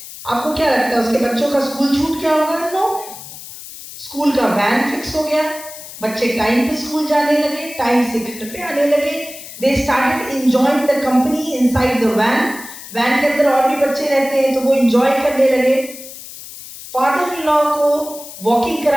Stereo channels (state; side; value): noise; left; hiss, 14 dB below the sound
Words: आपको क्या लगता है, उसके बच्चों का स्कूल छूट गया होगा? नो, स्कूल का वैन फिक्स हो गया, बच्चे टाइम पे स्कूल जाने लगे, टाइम से घर पे आने लगे। They started enjoying the company inside the van. Van के अंदर और भी बच्चे रहते हैं तो वो एंजॉय करने लगे। फादर इन लॉ को वॉकिंग